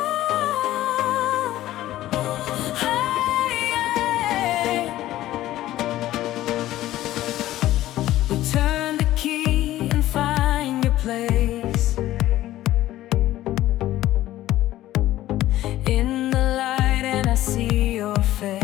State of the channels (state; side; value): quieter; right; 14.7 dB